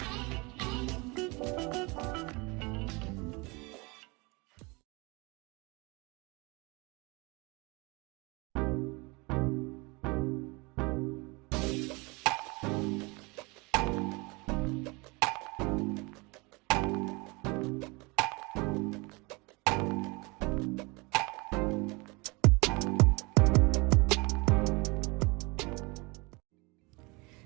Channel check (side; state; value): left; quieter; 26.8 dB